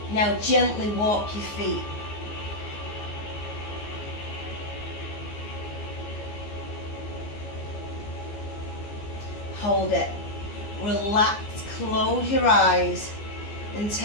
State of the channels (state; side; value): late; right; 14 ms